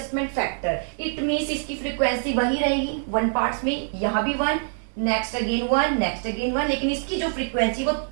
फैक्टर। इट मीन्स इसकी फ्रीक्वेंसी वही रहेगी 1 पार्ट्स में, यहां भी 1, नेक्स्ट अगेन 1, नेक्स्ट अगेन 1, लेकिन इसकी जो फ्रीक्वेंसी वो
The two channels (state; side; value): silent; left; 59 dB below the other